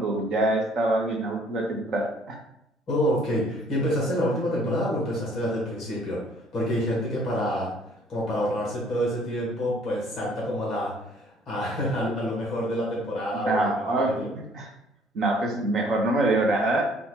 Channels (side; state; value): both; normal; correlation 0.59